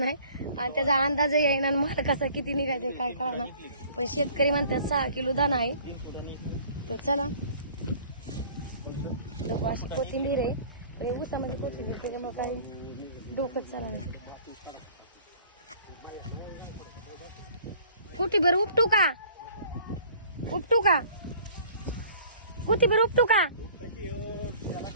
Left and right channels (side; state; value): both; inverted; correlation -0.51